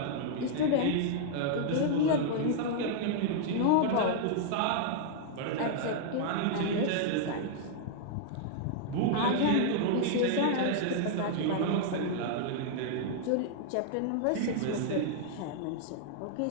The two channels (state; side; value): different; both; correlation -0.01